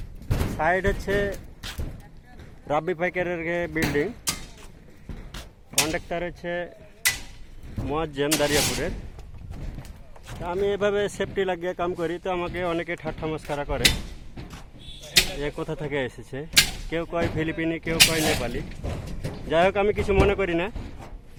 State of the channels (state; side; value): identical; both; correlation 1.00